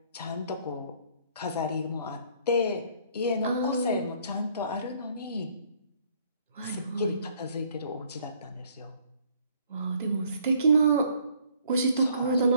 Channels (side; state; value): both; inverted; correlation -0.61